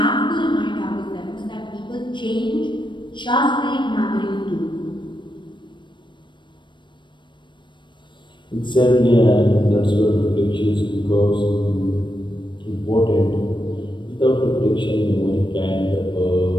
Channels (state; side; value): late; right; 0.23 ms